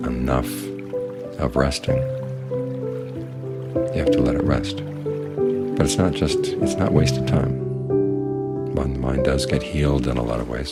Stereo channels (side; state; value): both; identical; correlation 1.00